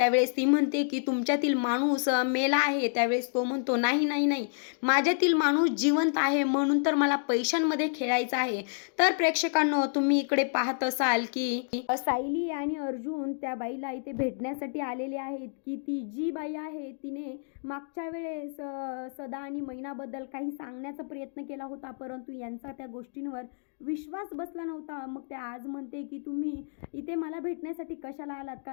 ती म्हणते की तुमच्यातील माणूस मेला आहे. त्यावेळेस तो म्हणतो नाही नाही नाही, माझ्यातील माणूस जिवंत आहे, म्हणून तर मला पैशांमध्ये खेळायचं आहे. तर प्रेक्षकांनो, तुम्ही इकडे पाहत असाल की सायली आणि अर्जुन त्या बाईला इथे भेटण्यासाठी आलेले आहेत की ती जी बाई आहे तिने मागच्या वेळेस सदा आणि मैनाबद्दल काही सांगण्याचा प्रयत्न केला होता, परंतु यांचा त्या गोष्टींवर विश्वास बसला नव्हता. मग त्या आज म्हणते की तुम्ही इथे मला भेटण्यासाठी कशाला आलात,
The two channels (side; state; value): right; silent; digital silence